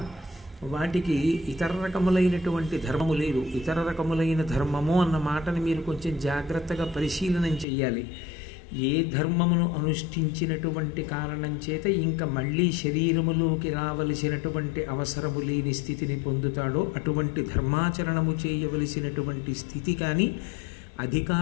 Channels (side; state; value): right; drops out; at 7.7 s